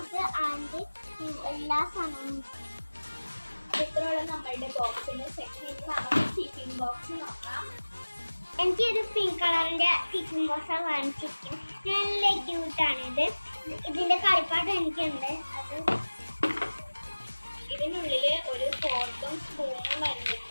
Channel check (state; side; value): inverted; both; correlation -1.00